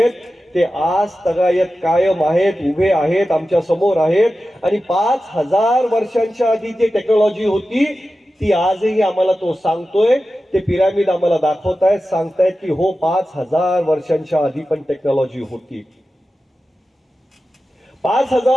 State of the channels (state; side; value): normal; both; correlation 0.93